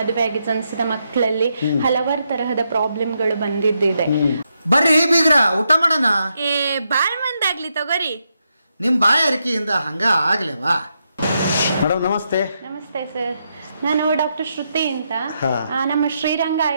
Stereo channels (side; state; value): both; inverted; correlation -0.82